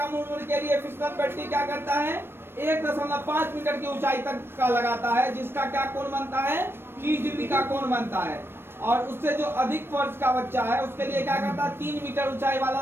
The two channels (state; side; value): late; left; 0.11 ms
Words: उम्र के लिए फिसलन पिट्टी क्या करता है, 1.5 मीटर की ऊंचाई तक का लगाता है, जिसका क्या कोण बनता है, 30 डिग्री का कोण बनता है। और उससे जो अधिक वर्ष का बच्चा है उसके लिए क्या करता है, 3 मीटर ऊंचाई वाला